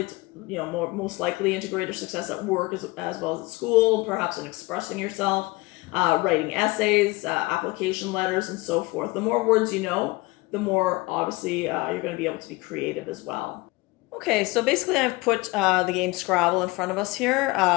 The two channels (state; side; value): quieter; right; 22.9 dB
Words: most likely into greater success at work as well as at school, perhaps in expressing yourself, writing essays, application letters, and so forth. The more words you know, the more, obviously, you're going to be able to be creative as well. Okay, so basically I've put the game Scrabble in front of us here.